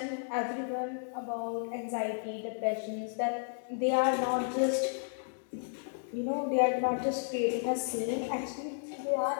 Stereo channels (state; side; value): silent; right; digital silence